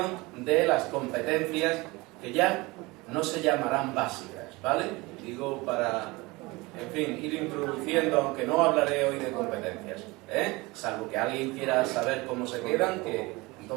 de las competencias que ya no se llamarán básicas, ¿vale? Digo para, en fin, ir introduciendo, aunque no hablaré hoy de competencias, salvo que alguien quiera saber cómo se quedan, que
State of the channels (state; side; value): quieter; left; 23.2 dB